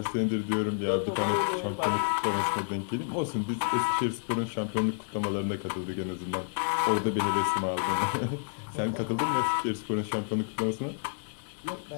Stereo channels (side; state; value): right; silent; digital silence